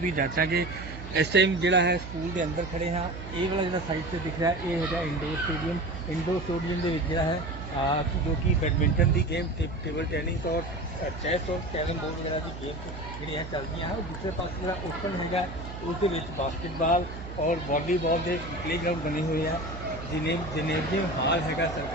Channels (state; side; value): noise; right; hum, 10 dB below the sound